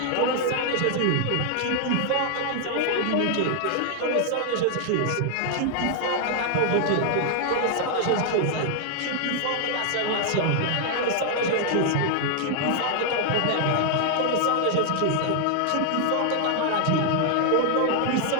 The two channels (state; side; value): different; both; correlation 0.00